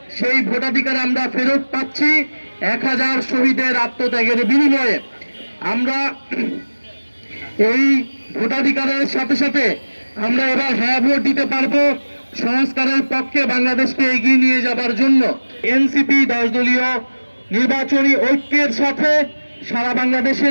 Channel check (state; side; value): inverted; both; correlation -1.00